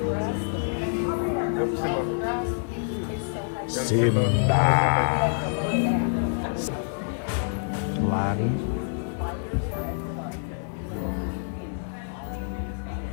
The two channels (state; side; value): silent; right; digital silence